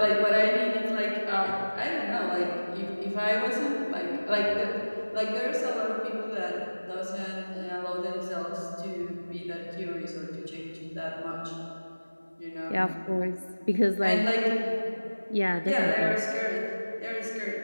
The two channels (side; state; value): both; inverted; correlation -1.00